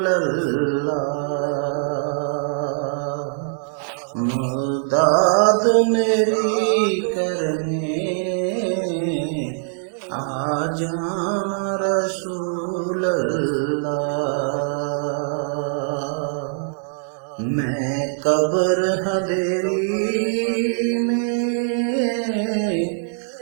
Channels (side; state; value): left; silent; digital silence